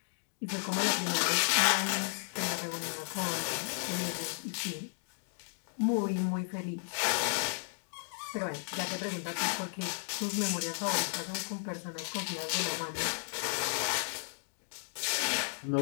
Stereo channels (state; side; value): silent; right; digital silence